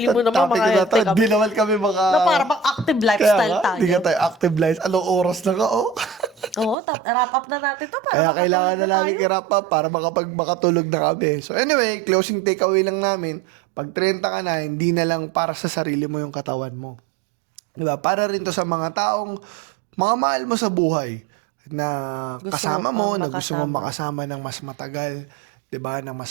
mo Ito, naman topic mga na to. healthy kami. Hindi naman kami mga... Na para bang active lifestyle Kaya nga, tayo. hindi ka tayo active lives. Anong oras na ka, oh? Oo, wrap up na natin to para Kaya kailangan makatulog na na tayo. namin i-wrap up para makatulog na kami. So anyway, closing takeaway lang namin, pag 30 ka na, hindi na lang para sa sarili mo yung katawan mo. Diba? Para rin to sa mga taong, mga mahal mo sa buhay, na Gusto kasama mo mo, pang na gusto mo makasama. makasama ng mas matagal, diba? Ng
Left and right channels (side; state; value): left; drops out; at 6.8 s